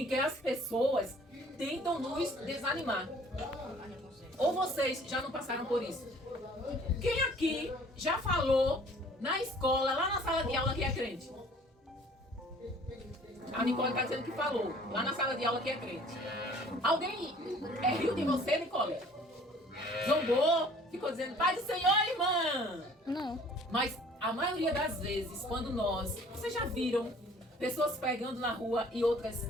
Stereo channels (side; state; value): both; normal; correlation 0.53